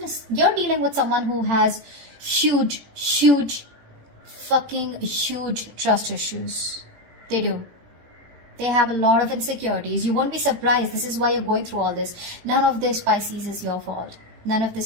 is... You're dealing with someone who has huge trust issues. They do. They have a lot of insecurities. You won't be surprised. This is why you're going through all this. None of this, Pisces, is your fault. None of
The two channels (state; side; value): late; left; 18 ms